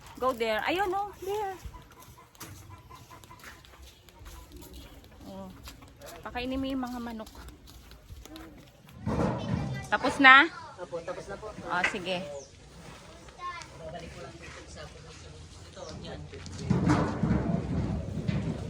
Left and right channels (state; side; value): identical; both; correlation 1.00